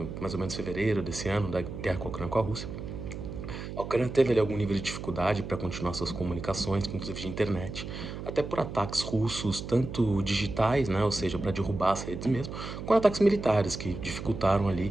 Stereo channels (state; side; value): noise; right; hum, 8 dB below the sound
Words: mais ou menos fevereiro desse ano, da guerra com a Ucrânia com a Rússia, a Ucrânia teve ali algum nível de dificuldade para continuar suas comunicações, inclusive de internet, até por ataques russos, tanto digitais, né, ou seja, para derrubar as redes mesmo, quanto ataques militares, que dificultaram ali